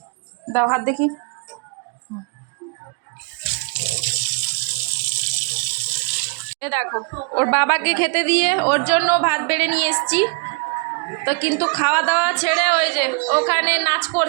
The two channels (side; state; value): left; quieter; 34.3 dB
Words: দাও হাত দেখি। দেখো, ওর বাবাকে খেতে দিয়ে ওর জন্য ভাত বেড়ে নিয়ে এসছি। তো কিন্তু খাওয়া দাওয়া ছেড়ে ওই যে ওখানে নাচ